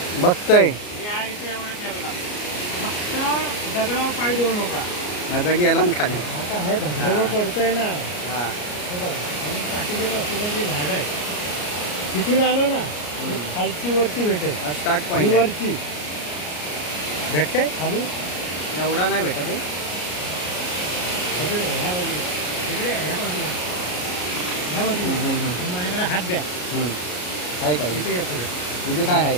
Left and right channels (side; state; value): right; late; 33 ms